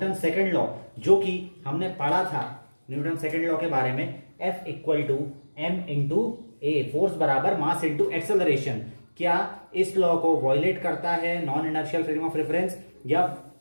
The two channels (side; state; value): both; inverted; correlation -1.00